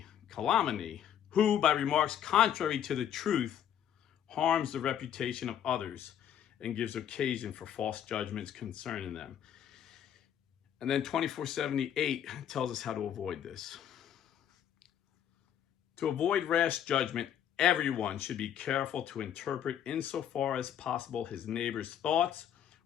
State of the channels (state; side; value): quieter; right; 9.8 dB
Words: who, by remarks contrary to the truth, harms the reputation of others and gives occasion for false judgments concerning them. And then 2478 tells us how to avoid this. To avoid rash judgment, everyone should be careful to interpret insofar as possible his neighbor's thoughts,